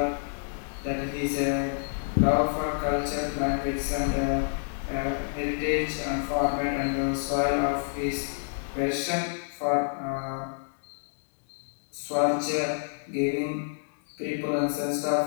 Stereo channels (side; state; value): right; silent; digital silence